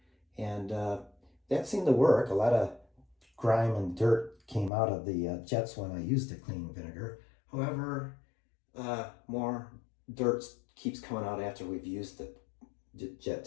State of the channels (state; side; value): drops out; right; at 4.7 s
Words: and that seemed to work. A lot of grime and dirt came out of the jets when I used the cleaning vinegar. However, more dirt keeps coming out after we've used the jet